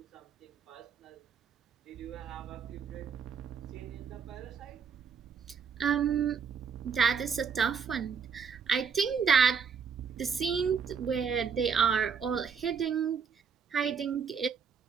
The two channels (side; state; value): left; quieter; 6.5 dB